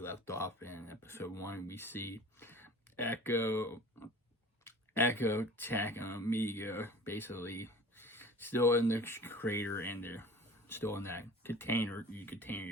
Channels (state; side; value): normal; both; correlation 0.42